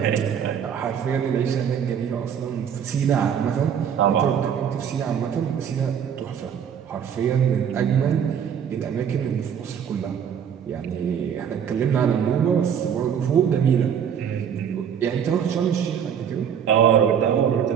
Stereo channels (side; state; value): left; quieter; 8.2 dB